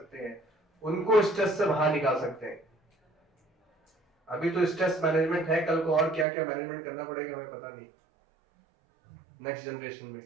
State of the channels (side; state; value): left; drops out; at 6.2 s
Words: हैं, उनको स्ट्रेस से बाहर निकाल सकते हैं। अभी तो स्ट्रेस मैनेजमेंट है, कल को और क्या क्या मैनेजमेंट करना पड़ेगा हमें पता नहीं। नेक्स्ट जनरेशन में,